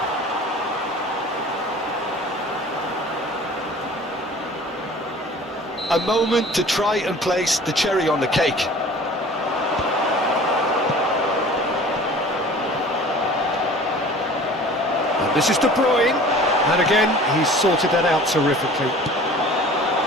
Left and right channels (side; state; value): both; normal; correlation 0.45